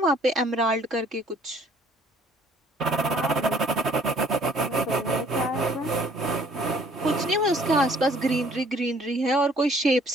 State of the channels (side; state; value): both; normal; correlation 0.58